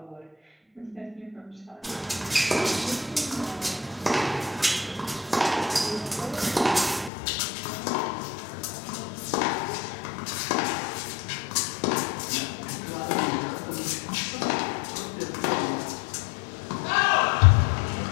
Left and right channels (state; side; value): drops out; right; at 7.1 s